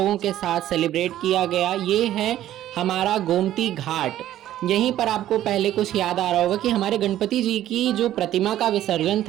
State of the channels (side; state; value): left; quieter; 12.8 dB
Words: के साथ सेलिब्रेट किया गया। ये है हमारा गोमती घाट। यहीं पर आपको पहले कुछ याद आ रहा होगा कि हमारे गणपति जी की जो प्रतिमा का विसर्जन